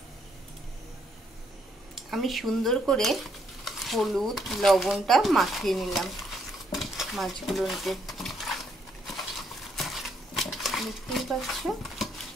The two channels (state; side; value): normal; both; correlation 0.72